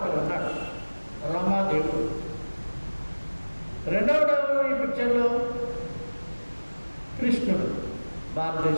ఉన్నాడు, రోమా దేవుడు. రెండవ ఈ పిక్చర్లో కృష్ణుడు,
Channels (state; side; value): inverted; both; correlation -1.00